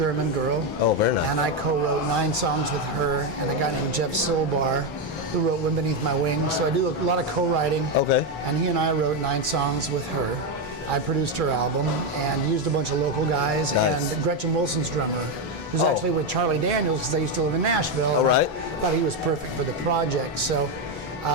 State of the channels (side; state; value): both; normal; correlation 0.07